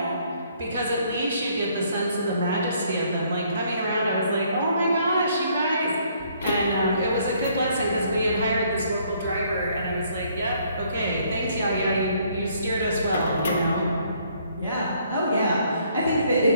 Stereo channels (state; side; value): inverted; both; correlation -0.66